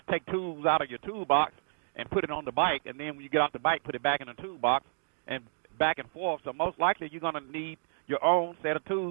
take tools out of your toolbox and put it on the bike, and then when you get off the bike, put it back in the toolbox and back and forth. So most likely you're going to need your own set of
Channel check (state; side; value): silent; left; 57 dB below the other